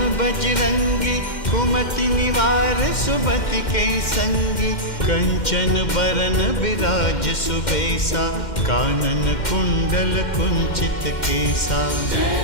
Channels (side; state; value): right; late; 2.1 ms